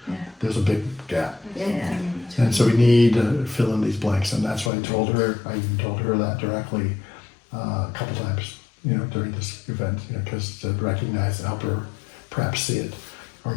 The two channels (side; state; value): right; drops out; at 4.7 s